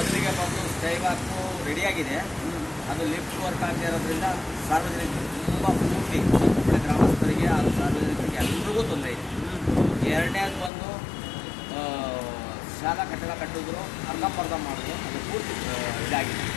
ಬಂದು ಸ್ಕೈವಾಕು ರೆಡಿಯಾಗಿದೆ, ಅದು ಲಿಫ್ಟ್ ವರ್ಕ್ ಆಗದೆ ಇರೋದ್ರಿಂದ ಸಾರ್ವಜನಿಕರು ತುಂಬ ಪೂರ್ತಿ ಸಂಪೂರ್ಣ ಗ್ರಾಮಸ್ಥರಿಗೆ ಹಾಗೂ ಸಾರ್ವಜನಿಕರಿಗೆ ಎಲ್ರಿಗೂ ತೊಂದರೆ ಇದೆ. ಎರಡನೇದು ಬಂದು ಶಾಲಾ ಕಟ್ಟಡ ಕಟ್ಟಿದ್ರು ಅರ್ಧಂಬರ್ಧ ಮಾಡಿದ್ರು, ಅದು ಪೂರ್ತಿ ಇದಾಗಿದೆ.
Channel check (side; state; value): right; drops out; at 10.7 s